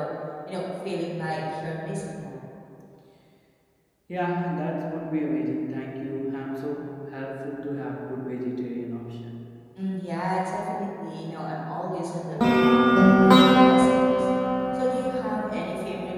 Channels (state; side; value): identical; both; correlation 1.00